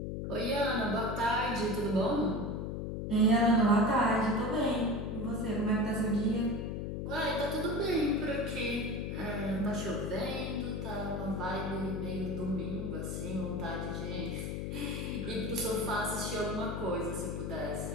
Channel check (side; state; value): left; noise; hum, 3 dB below the sound